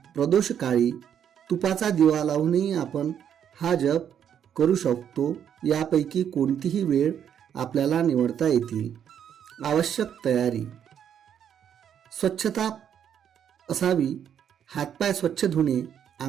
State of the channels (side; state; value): left; quieter; 8.9 dB